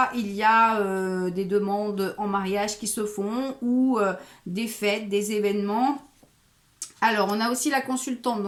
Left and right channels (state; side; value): identical; both; correlation 1.00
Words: il y a des demandes en mariage qui se font ou des fêtes, des événements. Alors, on a aussi la consultante,